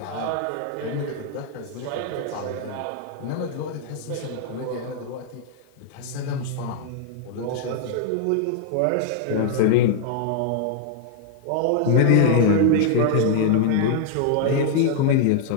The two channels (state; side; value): different; both; correlation 0.00